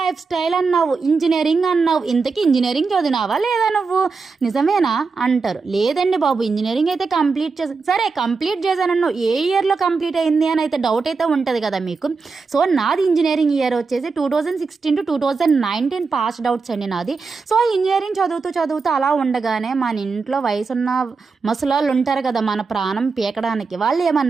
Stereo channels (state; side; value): quieter; left; 4.7 dB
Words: స్టైల్ అన్నావు, ఇంజనీరింగ్ అన్నావు, ఇంతకీ ఇంజనీరింగ్ చదివినావా లేదా నువ్వు, నిజమేనా అంటారు. లేదండి బాబు ఇంజనీరింగ్ అయితే కంప్లీట్ సరే కంప్లీట్ చేశానన్ను, ఏ ఇయర్లో కంప్లీట్ అయింది అని అయితే డౌట్ అయితే ఉంటుంది కదా మీకు. సో నాది ఇంజనీరింగ్ ఇయర్ వచ్చేసి 2016 to 2019 పాస్డ్ అవుట్స్ అండి నాది. సో ఇంజనీరింగ్ చదువుతూ అలా ఉండగానే మన ఇంట్లో వయసున్న ముసలాళ్ళు ఉంటారు కదా మన ప్రాణం పీకడానికి, వాళ్ళు